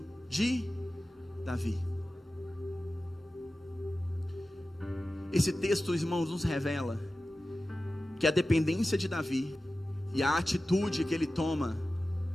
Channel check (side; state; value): both; normal; correlation 0.95